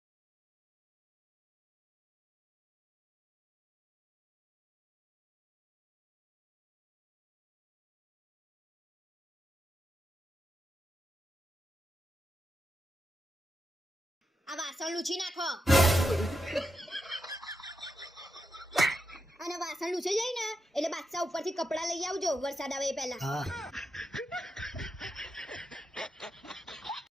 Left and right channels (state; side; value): normal; both; correlation 0.86